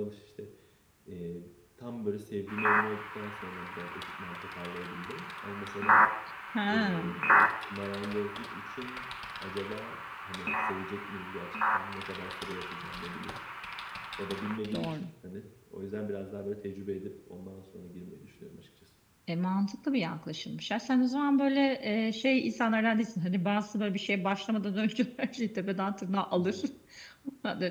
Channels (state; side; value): identical; both; correlation 1.00